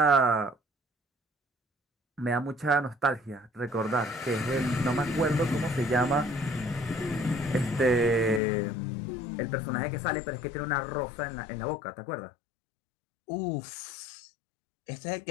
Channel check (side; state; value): right; drops out; at 8.4 s